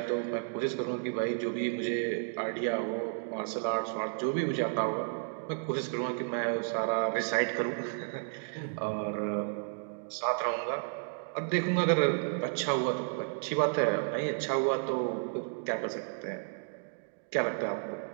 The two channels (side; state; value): left; silent; digital silence